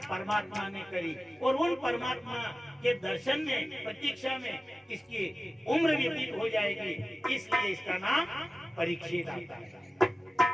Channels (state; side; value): normal; both; correlation 0.96